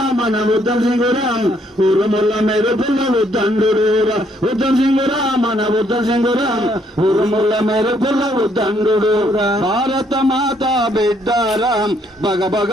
మన ఉద్దం సింగురా ఊరుముల మెరుపుల ఉద్దండురా ఉద్దం సింగురా మన ఉద్దం సింగురా ఊరుముల మెరుపుల ఉద్దండురా భారత మాత బిడ్డారా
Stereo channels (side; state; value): both; normal; correlation 0.69